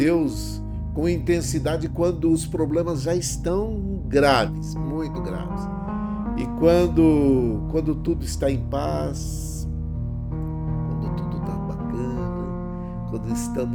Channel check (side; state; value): both; identical; correlation 1.00